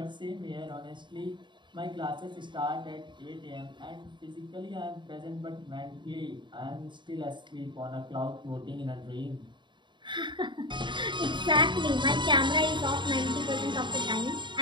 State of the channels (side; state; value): left; late; 0.23 ms